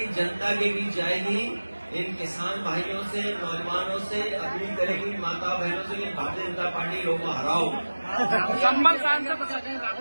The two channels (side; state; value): both; inverted; correlation -1.00